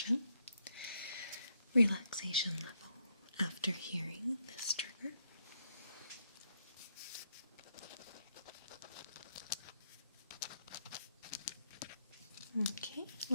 relaxation level after hearing this trigger. Okay,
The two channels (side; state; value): both; inverted; correlation -0.76